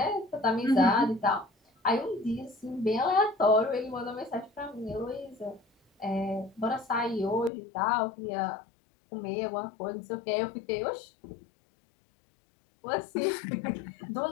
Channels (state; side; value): drops out; right; at 7.5 s